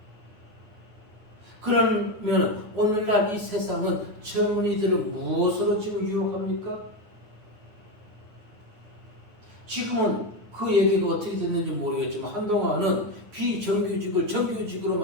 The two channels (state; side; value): late; left; 9.5 ms